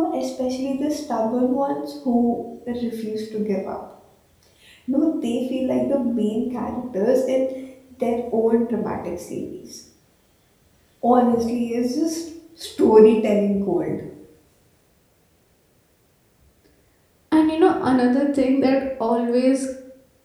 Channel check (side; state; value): both; identical; correlation 1.00